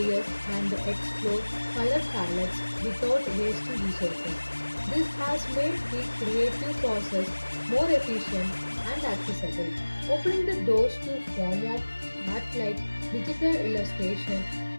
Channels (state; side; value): inverted; both; correlation -1.00